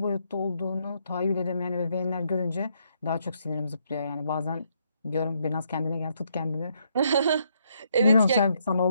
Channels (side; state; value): both; inverted; correlation -0.74